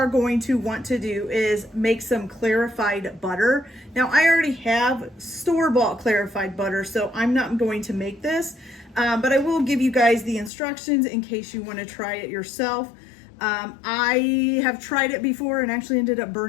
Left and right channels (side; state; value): right; drops out; at 10.5 s